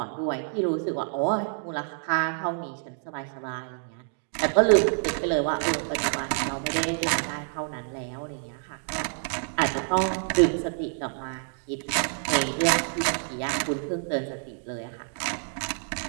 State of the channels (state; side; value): silent; left; 58 dB below the other